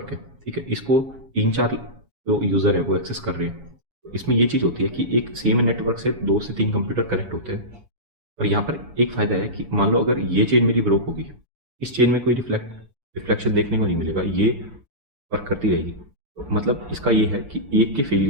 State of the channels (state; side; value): late; left; 7.2 ms